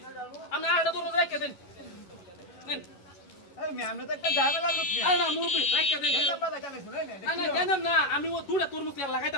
আমি আড়া তরমুজ রেখে দেন নেন আরে মে আমরা তো একটা ঝামেলা লোক মে আরে না মুরব্বি রেখে দেন এটা বালা জানে শুনে নে না না জানেন না আমি ও দুটা তরমুজ লাগাইতে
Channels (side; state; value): right; late; 11 ms